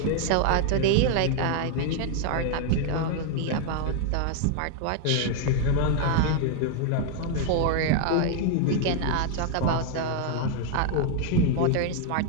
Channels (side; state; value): both; different; correlation 0.00